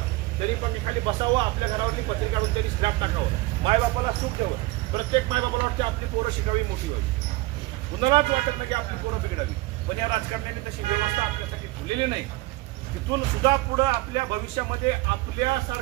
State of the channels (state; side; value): quieter; left; 20.5 dB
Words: तरी पण मी खाली बसावं, आपल्या घरावरली पत्रिका काढून तरी स्क्रॅप टाकावं, मायबापाला सुख द्यावं. प्रत्येक मायबापाला वाटते आपली पोरं शिकावी, मोठी व्हावी. कुणालाच वाटत नाही की आपली पोरं बिघडावी. पण या राजकारण्यांनी तशी व्यवस्था आपल्यासाठी ठेवलेली नाही. तिथून सुद्धा पुढं आपल्या भविष्यामध्ये